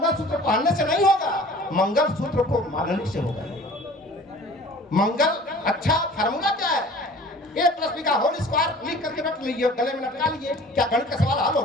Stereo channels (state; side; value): normal; both; correlation 0.46